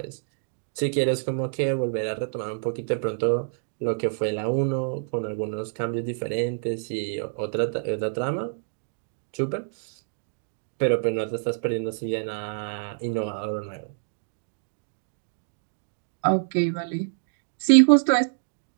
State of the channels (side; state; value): left; silent; digital silence